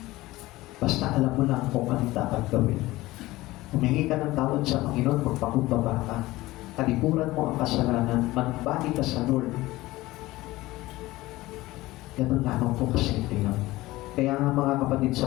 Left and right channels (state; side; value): quieter; right; 18.5 dB